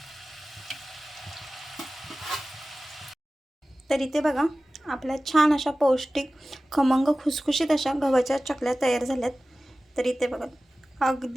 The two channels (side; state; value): both; normal; correlation 0.96